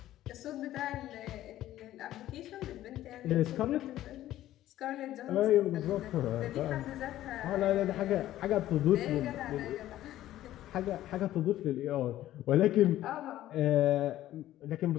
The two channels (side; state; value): right; quieter; 13.8 dB